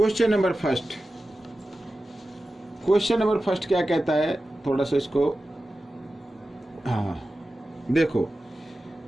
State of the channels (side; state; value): both; normal; correlation 0.94